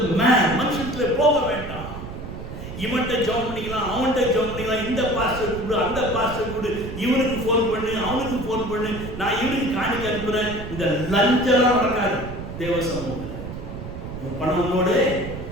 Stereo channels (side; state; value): right; noise; rumble, 9 dB below the sound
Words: man. மனுஷத்துல போக வேண்டாம். இவன்கிட்ட ஜாப் பண்ணிக்கலாம், அவன்கிட்ட ஜாப் பண்ணிக்கலாம், இந்த பாஸ்டர் கொடு, அந்த பாஸ்டர் கொடு, இவனுக்கு ஃபோன் பண்ணு, அவனுக்கு ஃபோன் பண்ணு, நான் இவனுக்கு காணிக்க அனுப்புறேன். இந்த லஞ்செல்லாம் நடக்காது தேவ சமூகத்தில். உன் பணம் உன்னோட